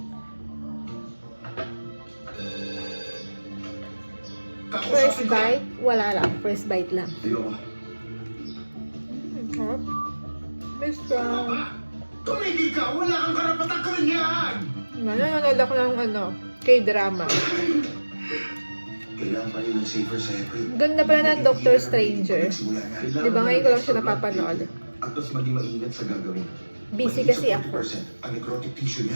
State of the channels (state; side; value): inverted; both; correlation -1.00